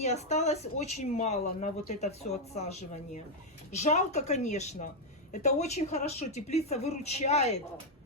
осталось очень мало на вот это все отсаживание. Жалко, конечно. Это очень хорошо. Теплица выручает.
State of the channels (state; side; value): normal; both; correlation -0.01